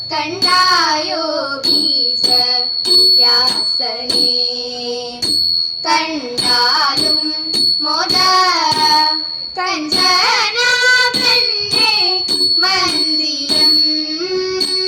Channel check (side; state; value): both; identical; correlation 1.00